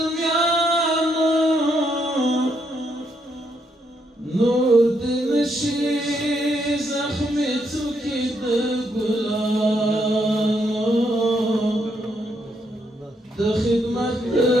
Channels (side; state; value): both; normal; correlation 0.76